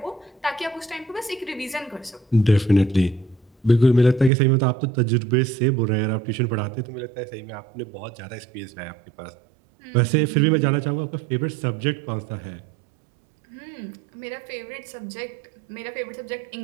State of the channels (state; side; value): drops out; left; at 4.3 s